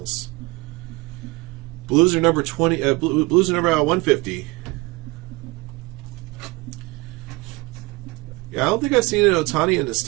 Blues are number 20. Blues are number 150. Yeah, I don't think I've seen an Ohtani in this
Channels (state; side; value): quieter; left; 23.6 dB